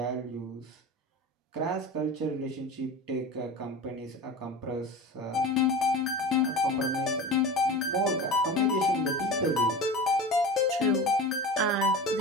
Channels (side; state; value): both; normal; correlation 0.31